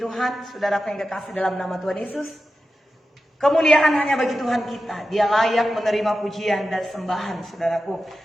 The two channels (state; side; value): normal; both; correlation 0.92